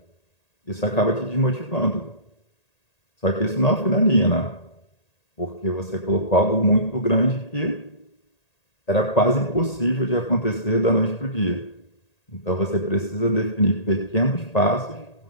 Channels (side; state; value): right; late; 1.8 ms